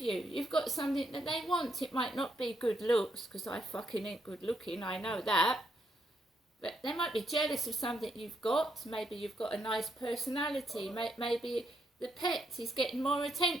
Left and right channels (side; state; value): both; normal; correlation 0.77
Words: you. You've got something that they want. It might not be good looks, because I fucking ain't good looking, I know that. But they might be jealous of something you've got. Maybe you've got a nice personality. Maybe the pet is getting more